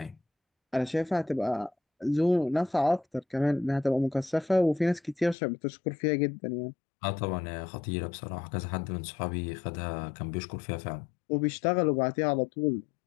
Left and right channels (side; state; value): right; drops out; at 5.4 s